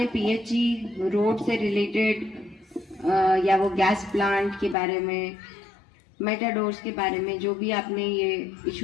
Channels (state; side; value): drops out; right; at 4.8 s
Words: PHE रोड से रिलेटेड या वो गैस प्लांट के बारे में, मेटाडोर्स के बारे में जो भी आपने ये